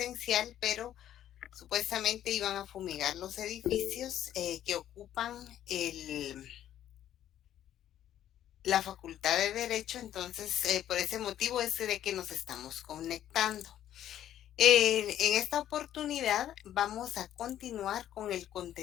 pero supuestamente iban a fumigar los edificios que ocupan la Facultad de Derecho. Entonces por ese motivo es de que nos estamos conectando. En esta oportunidad vamos a continuar con el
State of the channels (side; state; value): right; quieter; 11.5 dB